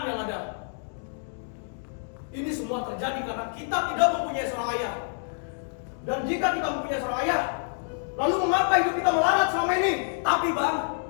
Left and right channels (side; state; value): right; silent; digital silence